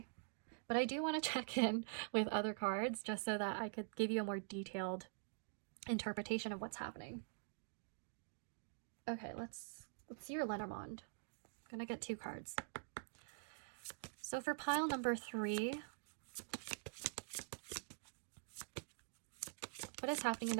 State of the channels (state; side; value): silent; left; digital silence